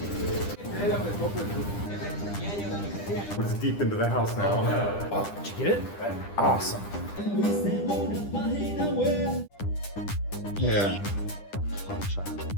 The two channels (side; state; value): right; late; 9.9 ms